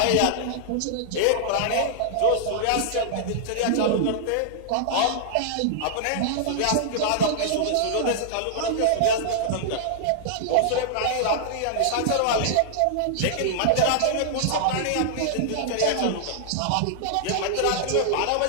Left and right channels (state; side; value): different; both; correlation -0.01